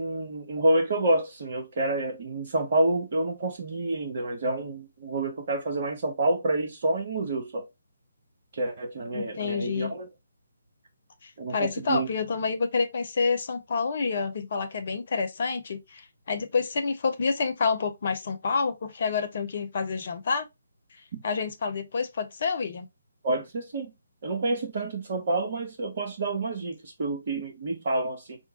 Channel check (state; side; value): inverted; both; correlation -0.73